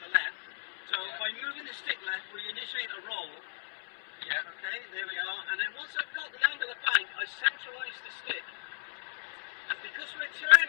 left. So by moving the stick left, we initiate a roll. Yeah. Okay, there we are. And then once I've got the angle of bank, I centralise the stick. And because we're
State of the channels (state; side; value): silent; right; 55 dB below the other